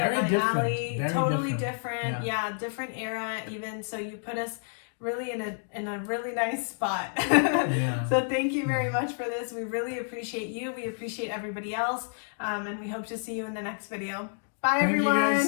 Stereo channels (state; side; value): silent; right; digital silence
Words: up my different. alley. Very Totally different. different. Yeah, different era even. So you put us really in a really nice spot. Yeah. So thank you very much for this. We really appreciate you. We appreciate everybody else. And we hope to see you in the next video. Bye, Thank everyone.